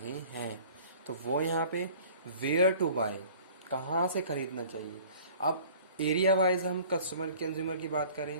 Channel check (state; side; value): inverted; both; correlation -0.49